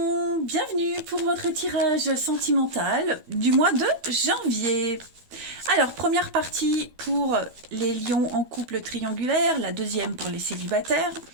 bienvenue pour votre tirage sentimental du mois de janvier. Alors, première partie pour les lions en couple triangulaire, la deuxième pour les célibataires.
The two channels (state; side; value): late; left; 12 ms